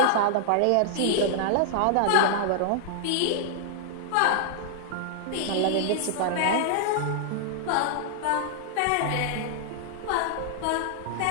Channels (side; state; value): both; different; correlation -0.01